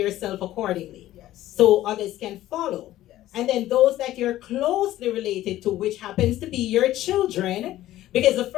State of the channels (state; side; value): quieter; right; 14.5 dB